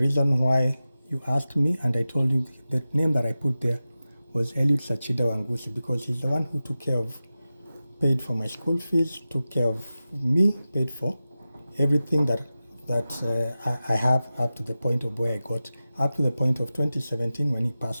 why you asked me, and I told you the name that I put there was Eliud Sachida Wangusi, because he's the one who paid for my school fees, took care of me, paid for everything that I have up to the point of where I got, up to the point of 2017 when he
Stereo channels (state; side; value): inverted; both; correlation -0.95